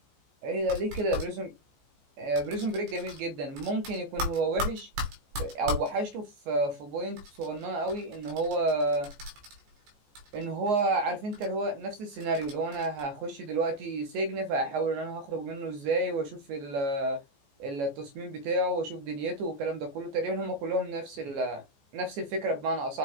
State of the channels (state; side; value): late; left; 14 ms